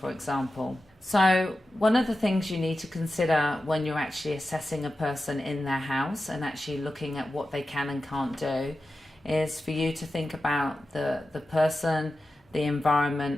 example. So one of the things you need to consider when you're actually assessing a person in their house and actually looking at what they can and can't do is for you to think about the person, the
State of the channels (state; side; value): normal; both; correlation 0.92